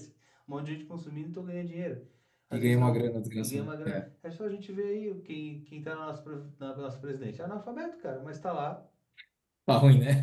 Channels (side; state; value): both; identical; correlation 1.00